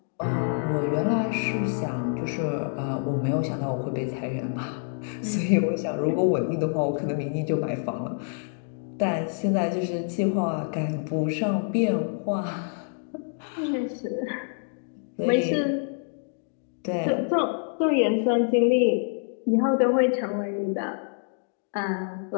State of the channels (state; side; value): silent; right; digital silence